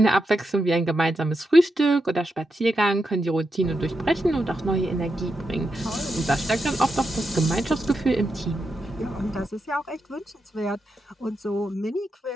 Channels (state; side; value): normal; both; correlation 0.86